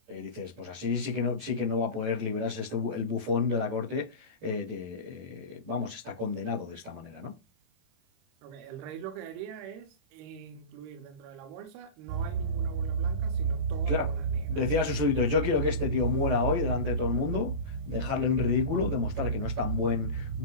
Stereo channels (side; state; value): left; late; 22 ms